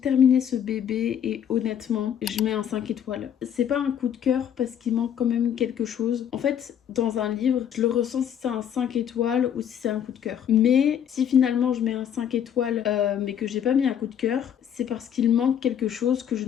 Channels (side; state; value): right; quieter; 9.1 dB